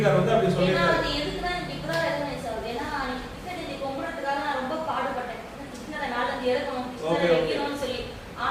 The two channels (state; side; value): identical; both; correlation 1.00